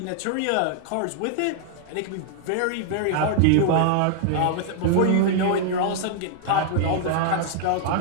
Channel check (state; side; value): different; both; correlation -0.01